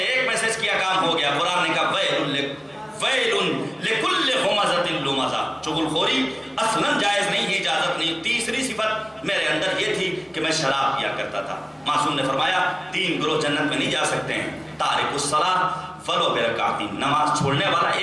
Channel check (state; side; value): identical; both; correlation 1.00